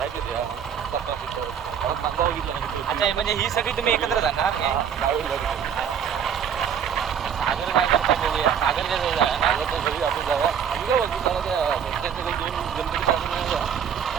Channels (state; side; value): quieter; left; 8.0 dB